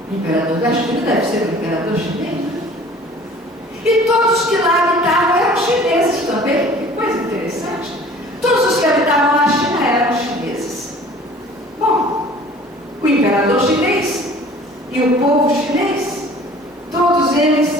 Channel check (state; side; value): normal; both; correlation 0.48